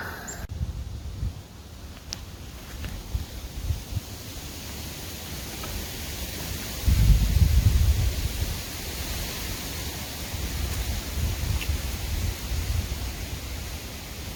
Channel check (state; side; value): identical; both; correlation 1.00